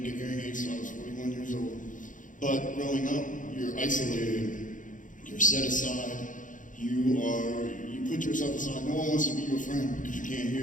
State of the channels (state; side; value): late; right; 0.38 ms